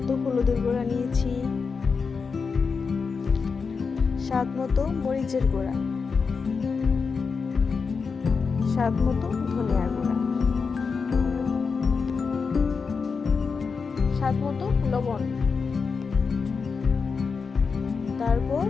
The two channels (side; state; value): right; quieter; 5.2 dB